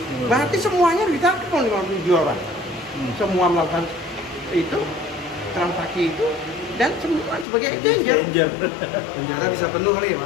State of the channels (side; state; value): right; drops out; at 7.5 s